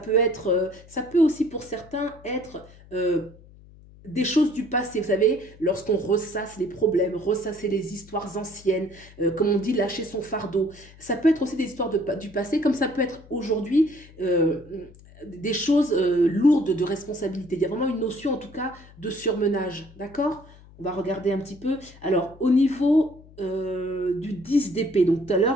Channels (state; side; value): noise; left; hum, 23 dB below the sound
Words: aussi pour certains être des choses du passé, vous savez, lorsqu'on ressasse les problèmes, ressasser les histoires anciennes, comme on dit, lâcher son fardeau. Ça peut être aussi des histoires du passé, comme ça peut être aujourd'hui des choses lourdes de responsabilité. Il y a vraiment une notion, en tout cas, de surmenage, d'accord? On va regarder un petit peu. Alors, au niveau du 10 d'épée, donc tout à